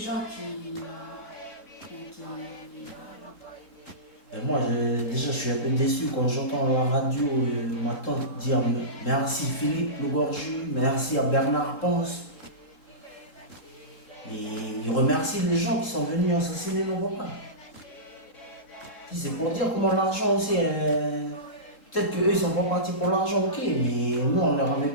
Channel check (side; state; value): right; late; 3.7 ms